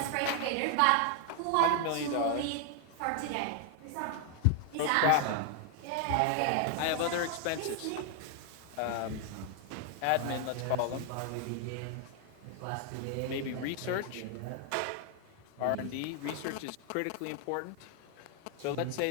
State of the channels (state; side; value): different; both; correlation 0.00